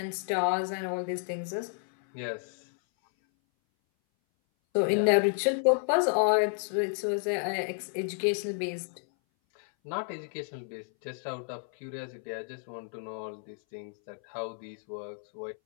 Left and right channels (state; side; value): silent; right; 57 dB below the other